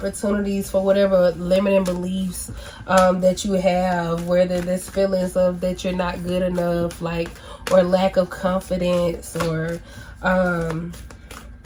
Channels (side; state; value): both; identical; correlation 1.00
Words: for whatever limiting beliefs that you have, whether there's feelings of that you're not good enough, like, or lack of confidence, or